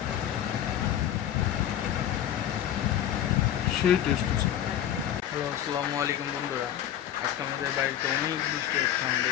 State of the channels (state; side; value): quieter; right; 10.9 dB